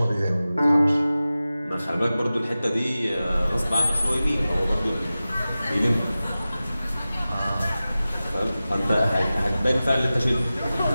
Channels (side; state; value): both; inverted; correlation -0.96